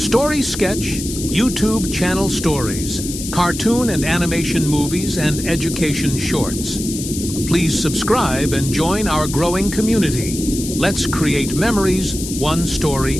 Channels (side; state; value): left; noise; hiss, 8 dB below the sound